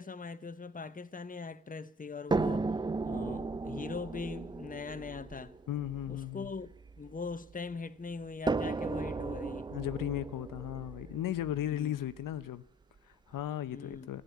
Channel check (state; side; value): normal; both; correlation 0.53